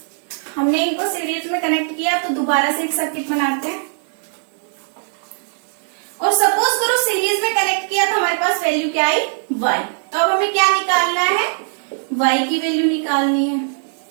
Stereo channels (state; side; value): silent; left; digital silence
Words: हमने इनको सीरीज में कनेक्ट किया तो दोबारा से एक सर्किट बनाते हैं। और सपोज करो सीरीज में कनेक्ट किया तो हमारे पास वैल्यू क्या आई y। तो अब हमें क्या निकालना है, y की वैल्यू निकालनी है।